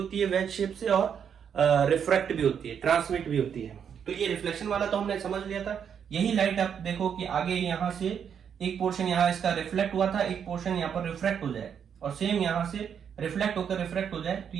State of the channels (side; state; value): left; quieter; 7.8 dB